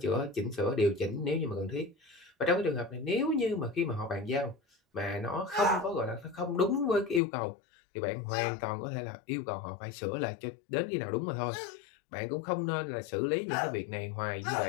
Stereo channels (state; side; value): drops out; right; at 7.2 s